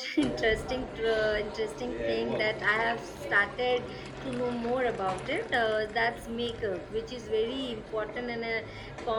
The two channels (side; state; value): both; identical; correlation 1.00